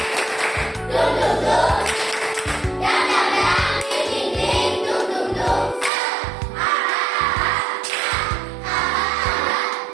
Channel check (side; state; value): left; drops out; at 5.9 s